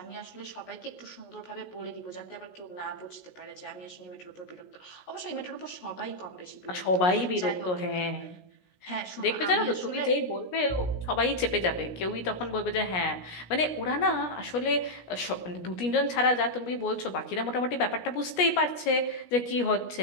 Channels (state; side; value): late; right; 17 ms